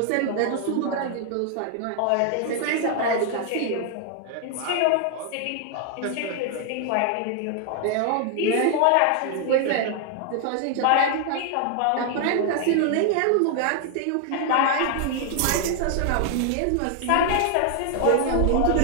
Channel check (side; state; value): both; different; correlation 0.00